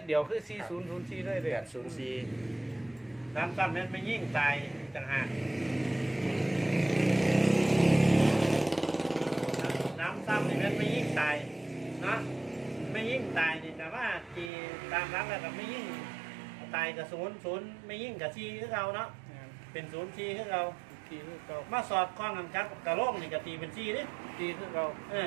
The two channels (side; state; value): left; drops out; at 14.5 s